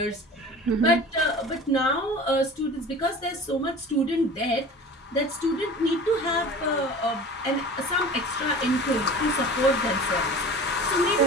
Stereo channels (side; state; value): both; normal; correlation 0.39